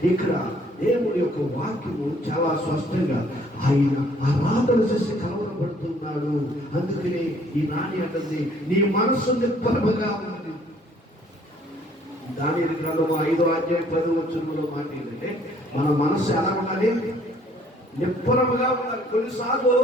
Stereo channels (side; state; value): both; normal; correlation 0.61